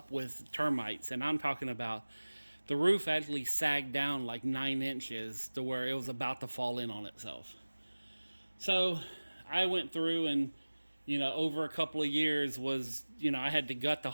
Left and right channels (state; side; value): inverted; both; correlation -1.00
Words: with termites. And I'm talking about the roof actually sagged down like 9 inches to where it was about to fall in on itself. So I went through and, you know, over a couple of years was, you know, I had to gut the